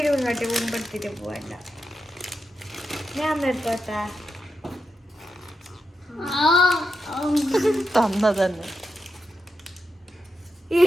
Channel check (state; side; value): normal; both; correlation 0.87